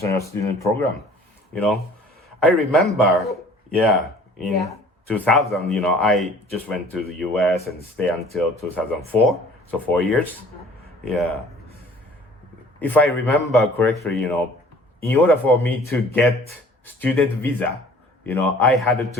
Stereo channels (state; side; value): normal; both; correlation 0.51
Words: student program. I remember, in 2000, I just went to the US and stay until 2004, so 4 years. Yeah. If I remember correctly, in order for me to get student visa, I had